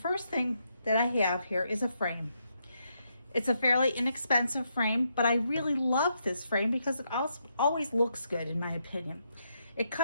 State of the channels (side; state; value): both; inverted; correlation -0.79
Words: thing that I have here is a frame. It's a fairly inexpensive frame, but I really love this frame because it always looks good in my opinion. It